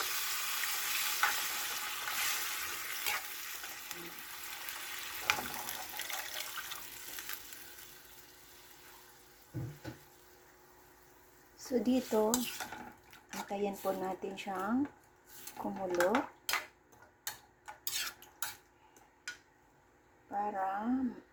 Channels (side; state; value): both; identical; correlation 1.00